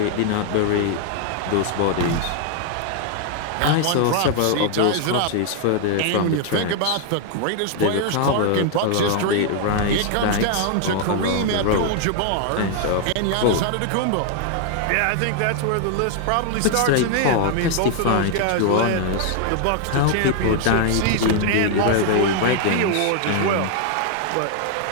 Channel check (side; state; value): both; different; correlation 0.00